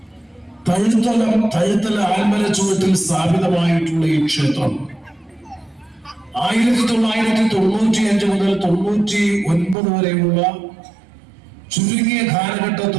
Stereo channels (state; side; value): drops out; left; at 9.8 s